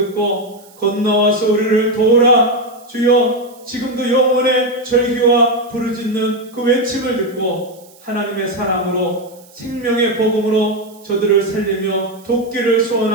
건너와서 우리를 도우라. 주여, 지금도 영혼의 절규와 부르짖는 그 외침을 듣고 하나님의 사랑으로 생명의 복음으로 저들을 살리며 돕기를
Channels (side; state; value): right; noise; hiss, 26 dB below the sound